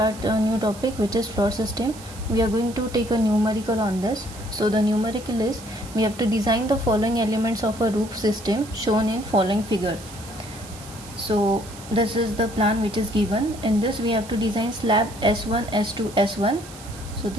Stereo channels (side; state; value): right; noise; hiss, 17 dB below the sound